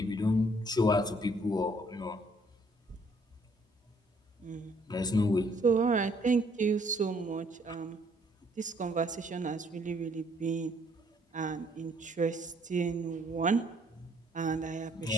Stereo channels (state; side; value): normal; both; correlation 0.64